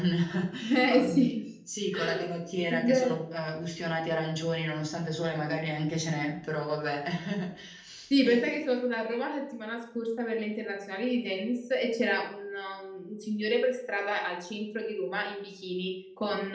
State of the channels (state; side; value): identical; both; correlation 1.00